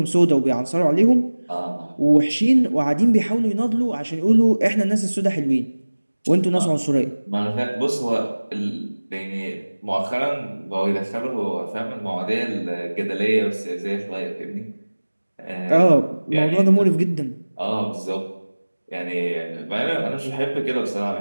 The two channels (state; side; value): inverted; both; correlation -1.00